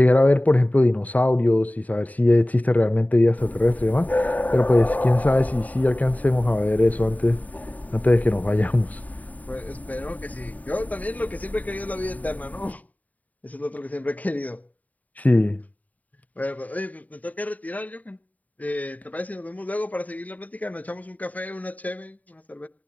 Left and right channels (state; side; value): late; right; 0.074 ms